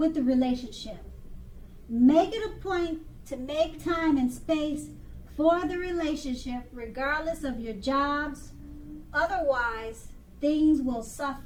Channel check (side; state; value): both; identical; correlation 1.00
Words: the relationship. Make it a point to make time and space for the relationship, regardless of your jobs. Otherwise, things will